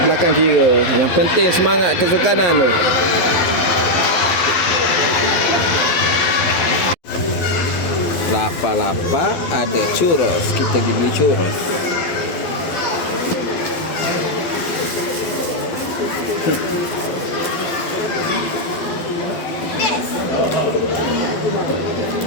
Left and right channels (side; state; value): right; late; 12 ms